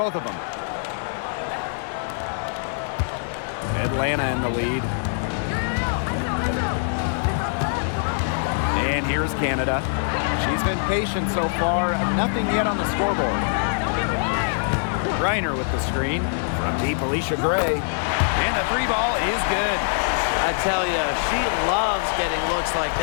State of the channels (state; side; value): silent; right; 63 dB below the other